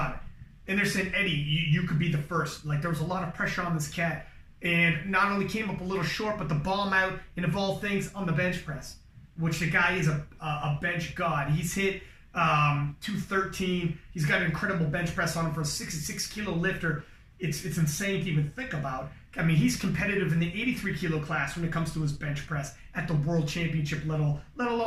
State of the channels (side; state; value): both; identical; correlation 1.00